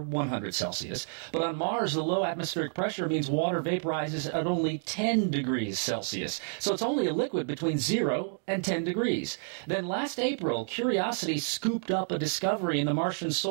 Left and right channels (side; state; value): left; silent; digital silence